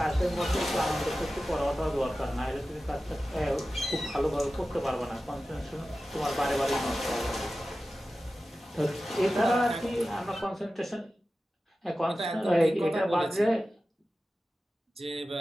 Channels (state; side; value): normal; both; correlation 0.94